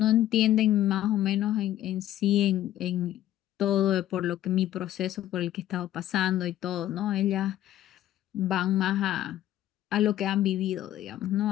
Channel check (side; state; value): right; quieter; 13.0 dB